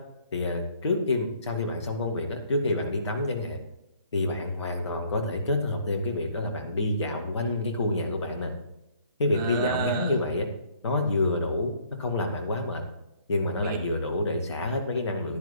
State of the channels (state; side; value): inverted; both; correlation -0.61